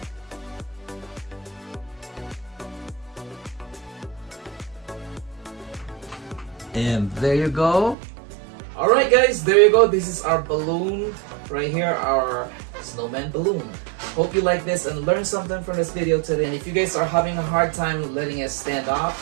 And there you go. Alright guys, there you go. This is our balloon right here, our snowman balloon. Hope you like this and learned something from this video today. And if you guys are having a hard time letting it stand up,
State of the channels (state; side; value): drops out; left; at 8.0 s